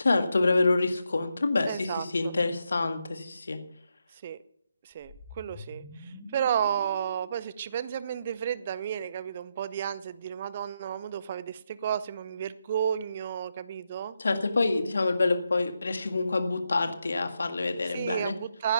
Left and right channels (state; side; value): inverted; both; correlation -0.82